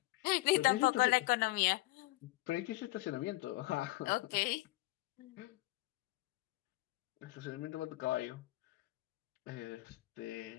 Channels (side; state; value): right; quieter; 19.3 dB